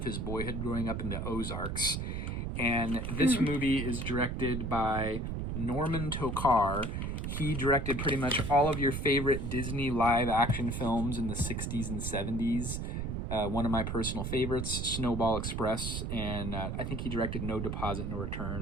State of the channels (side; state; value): right; noise; rumble, 3 dB below the sound